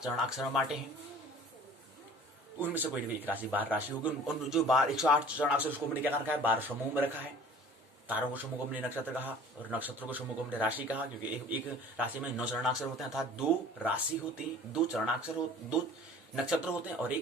चरणाक्षर में बांटे हैं। उनमें से कोई एक राशि 12 राशि होगी। उन जो 108 चरणाक्षर उसको हमने क्या रखा है, 12 समूह में रखा है। तारों को समूह को हमने नक्षत्र कहा और नक्षत्रों को समूह को हमने राशि कहा, क्योंकि एक राशि में 9 चरणाक्षर होते हैं, अर्थात 2 राशि होती है, 2 चरणाक्षर 2 नक्षत्र होते हैं और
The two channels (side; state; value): both; normal; correlation 0.47